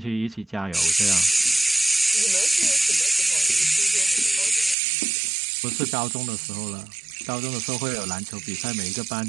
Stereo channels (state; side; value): drops out; left; at 4.8 s